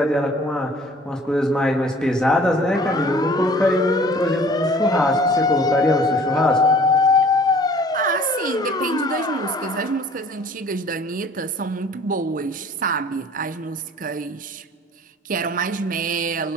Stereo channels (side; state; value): both; normal; correlation 0.50